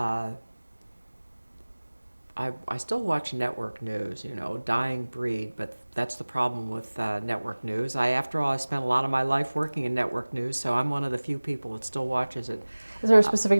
I still watch network news, dying breed, but that's the problem with network news. After all, I spent a lot of my life working in network news, so I'm one of the few people that still watches it. Is there a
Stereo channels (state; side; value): inverted; both; correlation -1.00